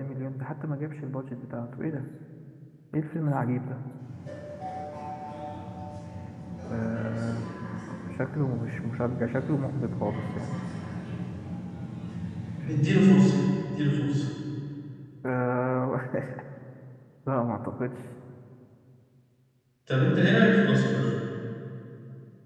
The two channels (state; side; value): identical; both; correlation 1.00